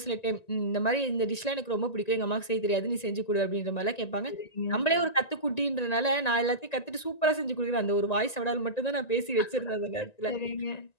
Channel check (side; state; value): right; late; 1.9 ms